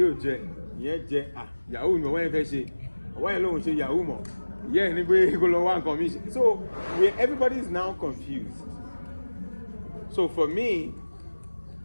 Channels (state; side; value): inverted; both; correlation -1.00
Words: ò jẹ, ìyẹn jẹ, yahoo ni ọwọ́ yẹn fẹ́ ṣe, ọwọ́ yẹn lòun ṣe yahoo mọ̀, ìyẹn ní pé kó lọ wá nǹkan mi ṣe. So everybody is now confused. So for me,